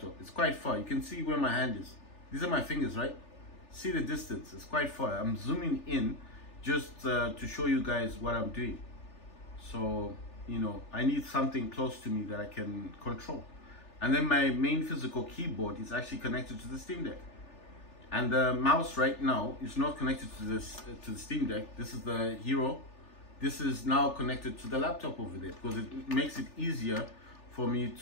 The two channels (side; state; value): right; late; 3.4 ms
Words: It's quite far. You can see where my hand is. These are my fingers, right? See the distance, it's quite far. I'm zooming in just to show you guys what I'm doing. So, you know, I need something close to me that I can control. And then my main physical keyboard is actually connected to the Steam Deck. And the mouse right now is not connected to the Steam Deck. This is the Hero. This is now connected to the laptop over there, because it makes it easier for me